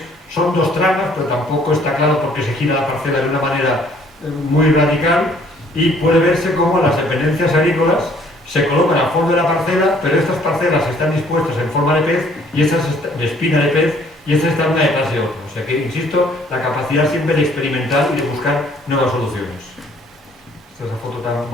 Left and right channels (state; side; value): normal; both; correlation 0.61